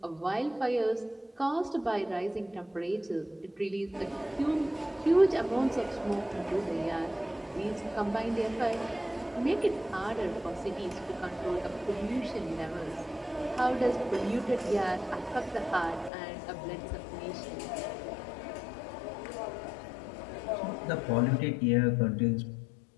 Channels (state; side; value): drops out; right; at 16.1 s